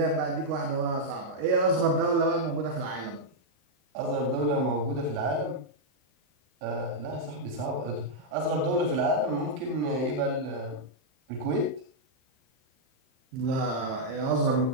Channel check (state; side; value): late; left; 38 ms